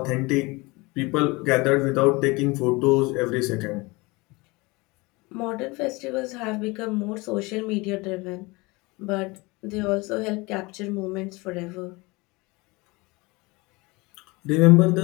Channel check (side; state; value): right; quieter; 24.5 dB